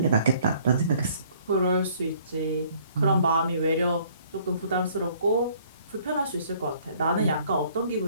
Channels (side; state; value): both; inverted; correlation -0.59